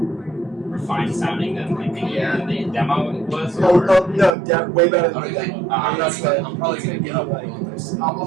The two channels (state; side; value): drops out; left; at 4.4 s